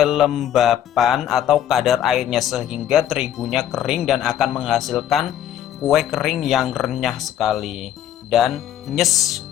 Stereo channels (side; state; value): right; quieter; 10.9 dB